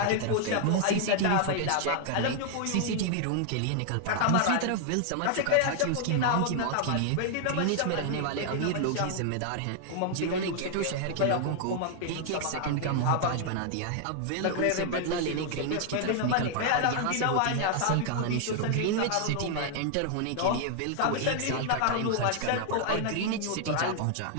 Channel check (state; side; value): different; both; correlation 0.00